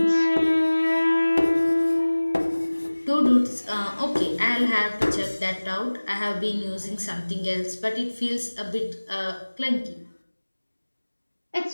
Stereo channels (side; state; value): both; inverted; correlation -1.00